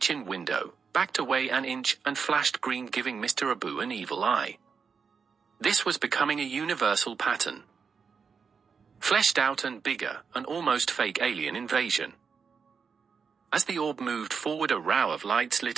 window, backed away an inch, and flashed green, giving Mr. Abu an evil eye. This was becoming a universal pattern. Fleshed out and bigger, an almost fake alien invasion. As the orb moved forward a row of lights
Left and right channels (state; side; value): quieter; left; 5.9 dB